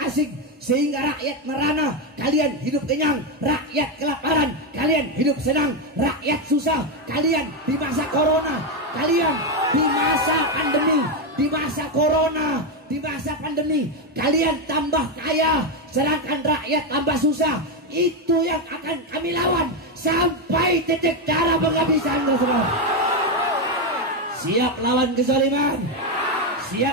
asing, sehingga rakyat merana, kalian hidup kenyang, rakyat kelaparan, kalian hidup senang, rakyat susah, kalian di masa corona, kalian di masa pandemi, di masa corona, di masa pandemi, kalian tambah kaya, sedangkan rakyat tambah susah. Itu yang akan kami lawan sampai titik darah penghabisan, saudara. Siap lawan kezaliman,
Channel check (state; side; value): normal; both; correlation 0.07